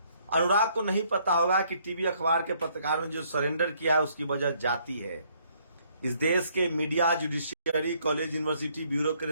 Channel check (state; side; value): inverted; both; correlation -0.66